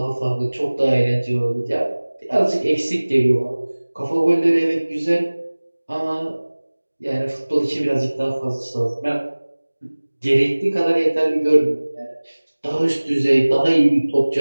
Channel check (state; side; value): inverted; both; correlation -1.00